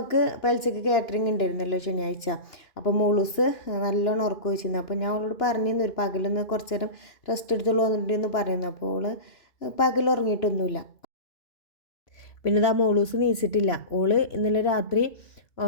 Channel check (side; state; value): right; late; 2.9 ms